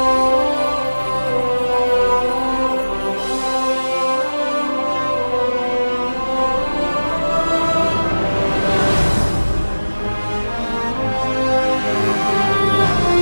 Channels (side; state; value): both; inverted; correlation -1.00